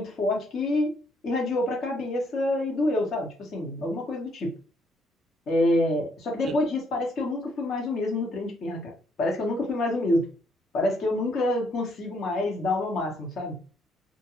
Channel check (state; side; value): normal; both; correlation 0.70